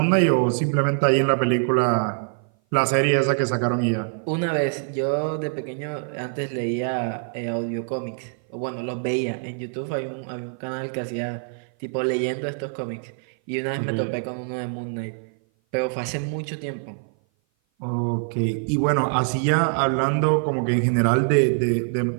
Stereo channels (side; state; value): left; silent; 57 dB below the other